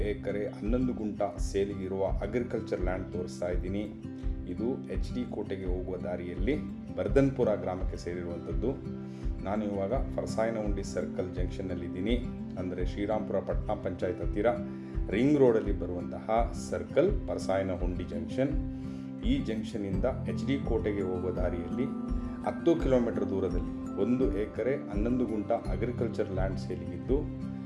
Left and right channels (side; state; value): both; identical; correlation 1.00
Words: ಎಕರೆ 11 ಗುಂಟ ಸೇಲಿಗಿರುವ ಅಗ್ರಿಕಲ್ಚರ್ ಲ್ಯಾಂಡ್ ತೋರಿಸ್ತಾ ಇದ್ದೀನಿ. ಇದು HD ಕೋಟೆಗೆ ಹೋಗುವ ದಾರಿಯಲ್ಲಿ ಬರ್ಧನ್ಪುರ ಗ್ರಾಮಕ್ಕೆ ಸೇರಿರುವಂಥದ್ದು. ನಾನು ಇವಾಗ ಪರಸಾಯನಹುಂಡಿ ಸರ್ಕಲ್ ಜಂಕ್ಷನ್ನಲ್ಲಿದ್ದೀನಿ. ಅಂದರೆ ಶ್ರೀರಾಮ್ಪುರ ಪಟ್ಟಣ ಪಂಚಾಯತ್ ಹತ್ತಿರ ರಿಂಗ್ ರೋಡಲ್ಲಿ ಬರುವಂತಹ ಸರ್ಕಲ್ ಪರಸಾಯನಹುಂಡಿ ಜಂಕ್ಷನ್. ಈ ಜಂಕ್ಷನ್ನಿಂದ HD ಕೋಟೆಗೆ ಹೋಗುವ ದಾರಿಯಲ್ಲಿ 10 ಕಿಲೋಮೀಟರ್ ದೂರದಲ್ಲಿ 1 ಎಕರೆ 11 ಗುಂಟ ಅಗ್ರಿಕಲ್ಚರ್ ಲ್ಯಾಂಡ್ ಸೇಲಿಗಿದ್ದು,